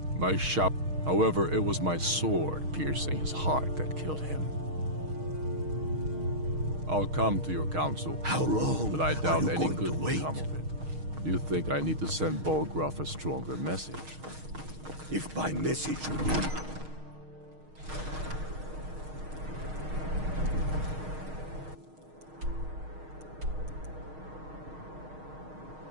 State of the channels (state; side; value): late; left; 6.4 ms